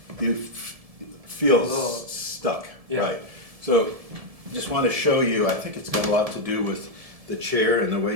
You feel little, stuck, yeah. right? So, just want to show you. I think it's got a lot to do with the chair and the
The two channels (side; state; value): left; late; 1.7 ms